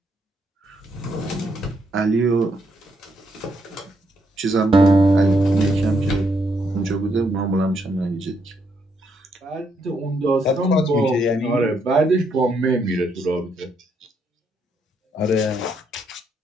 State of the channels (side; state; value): both; normal; correlation 0.76